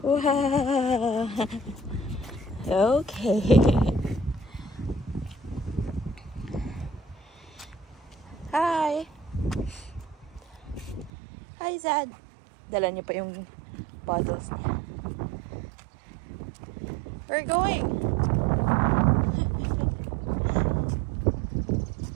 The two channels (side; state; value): left; drops out; at 11.1 s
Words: Wow! Okay. Zad. Dala niya pa yung bottles niya. We're going.